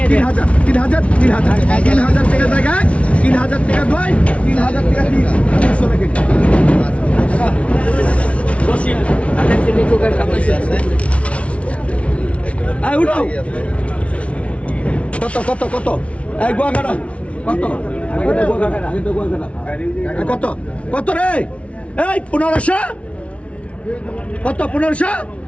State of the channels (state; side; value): late; right; 0.063 ms